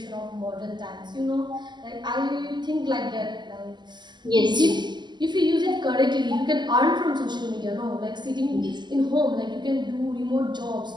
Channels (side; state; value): left; late; 0.21 ms